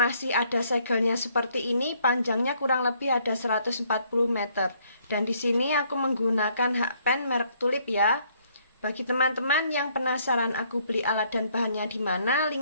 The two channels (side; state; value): both; inverted; correlation -0.67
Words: ada segelnya seperti ini, panjangnya kurang lebih ada 140 meter. Dan di sini aku menggunakan hakpen merek Tulip ya. Bagi teman-teman yang penasaran aku beli alat dan bahannya di mana,